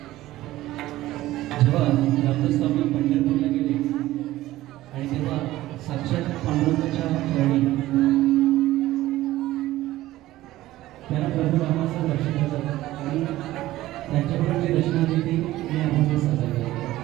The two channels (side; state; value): left; quieter; 15.9 dB